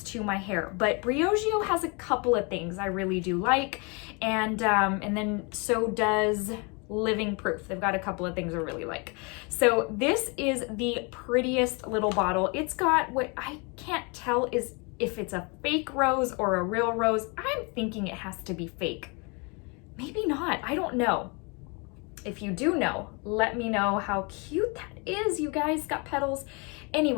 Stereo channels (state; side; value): quieter; right; 31.4 dB